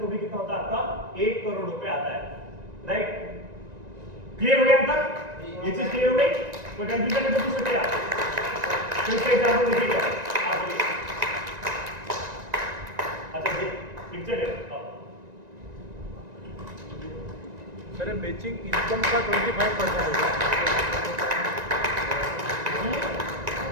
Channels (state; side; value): late; left; 1.9 ms